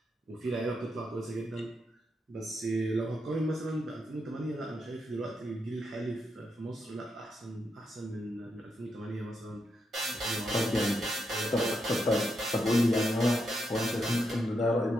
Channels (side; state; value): both; normal; correlation 0.83